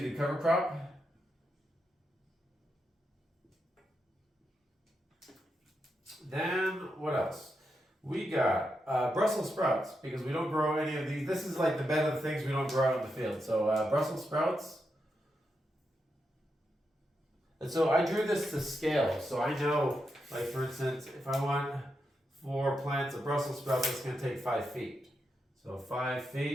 cover crop. Then what else? We got Brussels sprouts because we don't grow any of these. This is like the bed of the things we don't grow out in the field. So Brussels sprouts. And so I drew this to scale. So I know, like for instance, if I want 4 plants of Brussels sprouts, that's going to take 5 feet. So 5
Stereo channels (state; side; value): normal; both; correlation 0.85